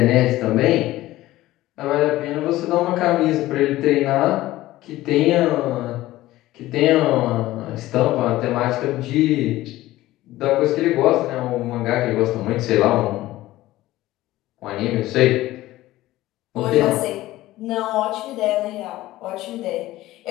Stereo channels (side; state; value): right; quieter; 16.5 dB